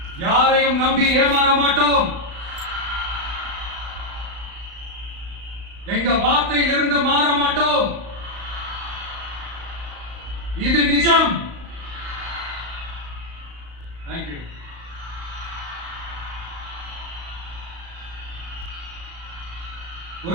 யாரையும் நம்பி ஏமாற மாட்டோம். எங்க வார்த்தையிலிருந்து மாற மாட்டோம். இது நிஜம். தேங்க்யூ.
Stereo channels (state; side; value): late; left; 35 ms